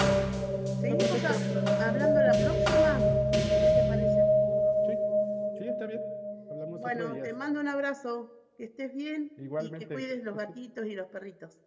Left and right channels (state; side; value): identical; both; correlation 1.00